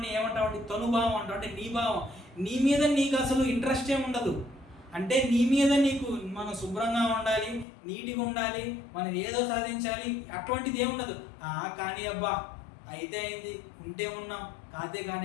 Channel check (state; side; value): drops out; right; at 7.7 s